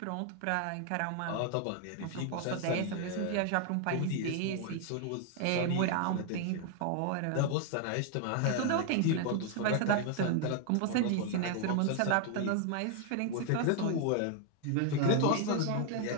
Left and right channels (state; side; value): different; both; correlation 0.00